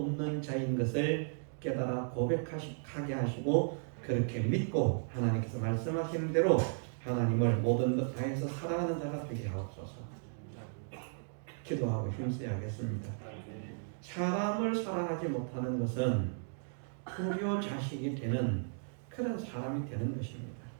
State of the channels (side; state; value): left; silent; digital silence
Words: 자인 것을 깨달아 고백하게 하시고 그렇게 믿고 하나님께서 말씀하시는 대로 하나님을 모든 것 다해서 사랑하는 자가 되게 하옵소서. 기도하고 힘써야겠습니다. 사람을 사랑하지 못하는 것은 불효 자식이 되는 그런 사람이 되는 것입니다.